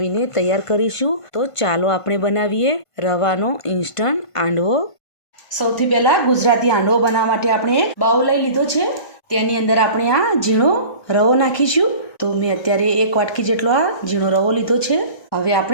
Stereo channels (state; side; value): late; right; 1.5 ms